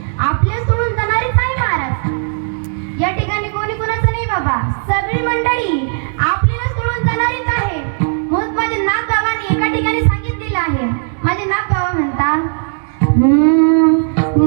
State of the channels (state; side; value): silent; left; 63 dB below the other